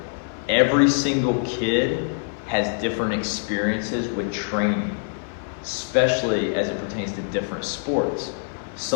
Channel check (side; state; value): right; silent; 59 dB below the other